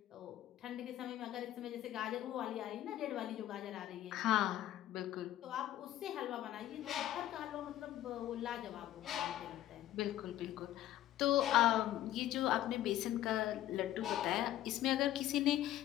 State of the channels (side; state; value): right; quieter; 13.3 dB